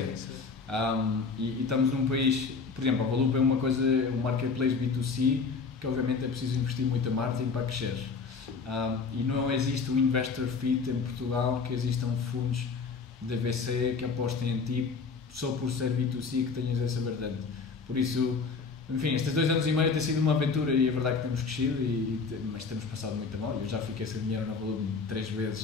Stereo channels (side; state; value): right; quieter; 4.8 dB